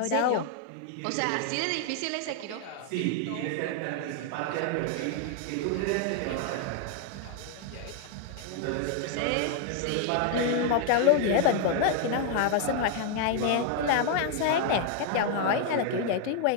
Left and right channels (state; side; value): different; both; correlation 0.00